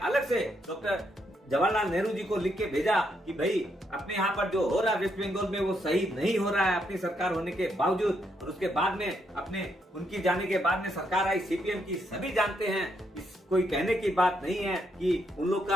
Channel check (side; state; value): both; normal; correlation 0.77